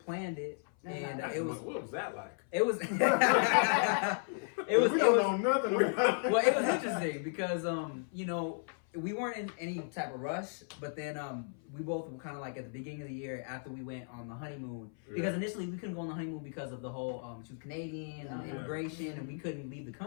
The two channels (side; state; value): right; silent; 55 dB below the other